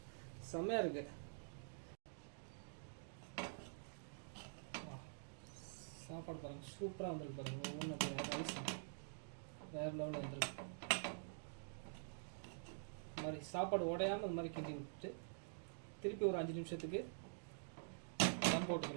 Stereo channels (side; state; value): left; silent; digital silence